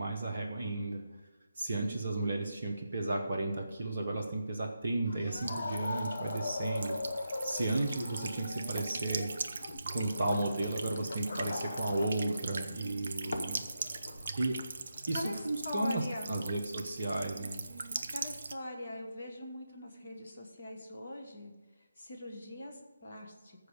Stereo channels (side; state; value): both; inverted; correlation -0.85